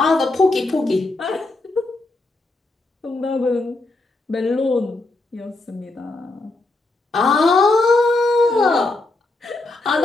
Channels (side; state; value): right; quieter; 3.1 dB